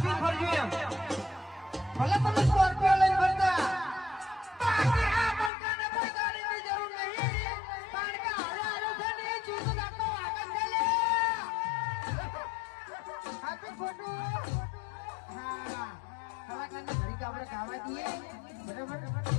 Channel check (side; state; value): right; drops out; at 5.5 s